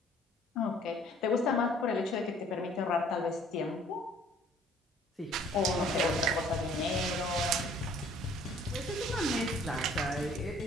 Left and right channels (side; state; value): both; normal; correlation 0.57